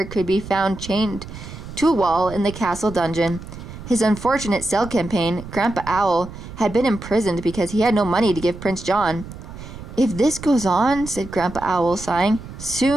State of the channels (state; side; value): noise; right; rumble, 13 dB below the sound